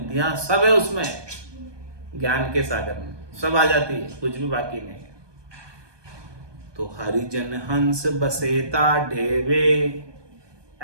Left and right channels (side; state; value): left; late; 1.2 ms